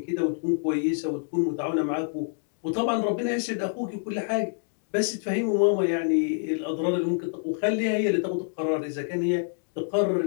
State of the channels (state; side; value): silent; right; digital silence